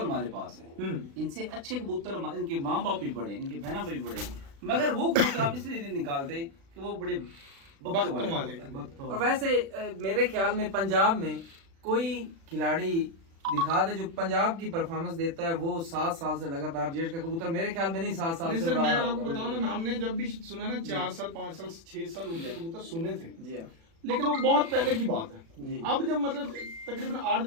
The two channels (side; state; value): left; late; 36 ms